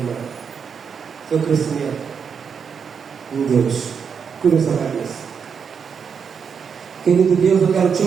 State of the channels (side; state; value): left; quieter; 6.6 dB